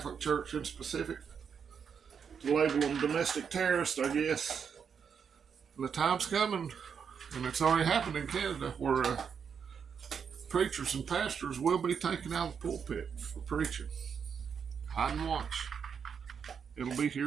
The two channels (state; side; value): quieter; left; 6.8 dB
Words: Church in specific, to label them domestic terrorists, I guess. And the time's coming, and it's already happened in Canada, where preachers and pastors will be taken out of the pulpit for preaching. Hide and watch. It'll be